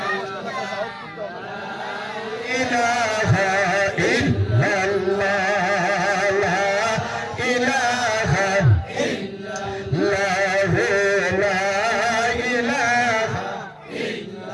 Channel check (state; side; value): identical; both; correlation 1.00